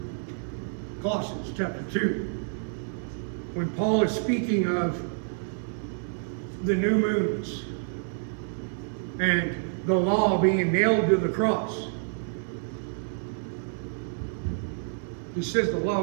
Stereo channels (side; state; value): left; silent; 59 dB below the other